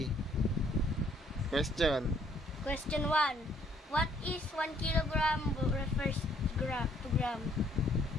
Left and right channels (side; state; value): both; normal; correlation 0.65